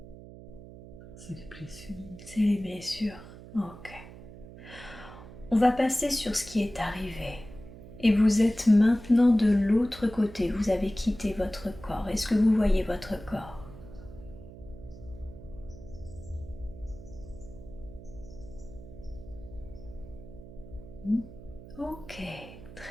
C'est les blessures. C'est les blessures. Ok. On va passer sur ce qui est arrivé. Et vous êtes maintenant de l'autre côté. Vous avez quitté votre corps. Est-ce que vous voyez votre corps? Ok,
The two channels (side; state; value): right; noise; hum, 16 dB below the sound